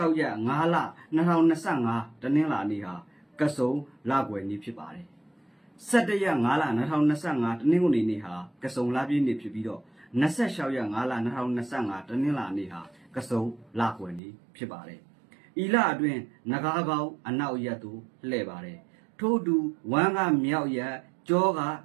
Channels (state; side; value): drops out; left; at 14.2 s